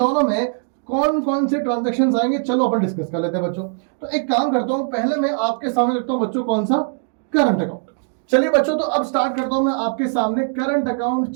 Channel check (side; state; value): left; silent; digital silence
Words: में कौन कौन से ट्रांजैक्शंस आएंगे, चलो अपन डिस्कस कर लेते हैं बच्चों। तो एक काम करता हूं, पहले मैं आपके सामने रखता हूं बच्चों कौन सा? Current account. चलिए बच्चों, तो अब स्टार्ट करता हूं मैं आपके सामने करंट अकाउंट।